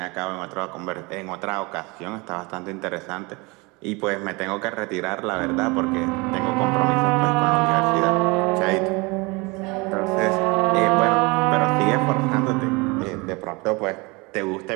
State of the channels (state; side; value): quieter; left; 26.3 dB